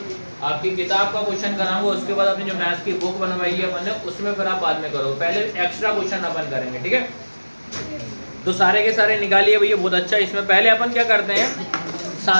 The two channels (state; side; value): inverted; both; correlation -1.00